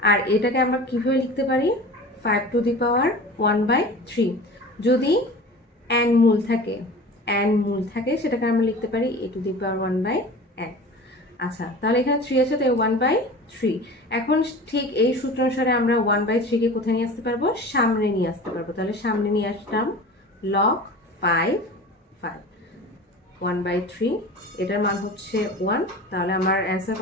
আর এটাকে আমরা কিভাবে লিখতে পারি? 5 টু দি পাওয়ার 1/3। যদি n মূল থাকে সেটাকে আমরা লিখতে পারি a to the power 1/n। আচ্ছা, তাহলে এখানে 3 আছে তাই 1/3। এখন ঠিক এই সূত্র অনুসারে আমরা 1/3 কে কোথায় নিয়ে আসতে পারবো? সামনে নিয়ে আসতে পারবো। তাহলে সামনে নিয়ে আসলাম লগ 5 1/3, এটার মান হচ্ছে 1, তাহলে আমার অ্যান্সার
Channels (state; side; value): normal; both; correlation 0.37